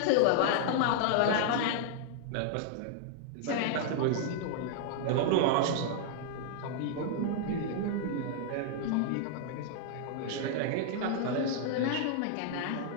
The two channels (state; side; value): different; both; correlation -0.01